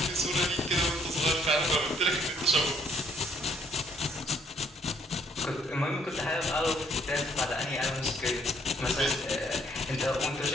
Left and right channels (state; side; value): normal; both; correlation 0.66